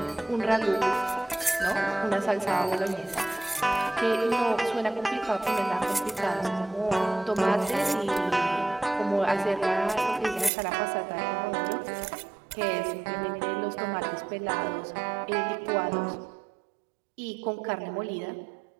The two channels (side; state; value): left; drops out; at 10.5 s